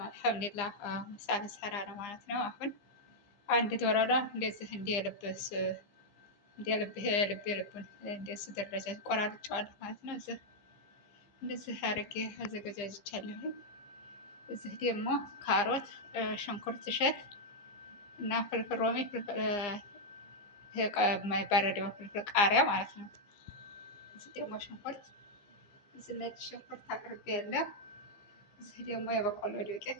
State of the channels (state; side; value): late; right; 15 ms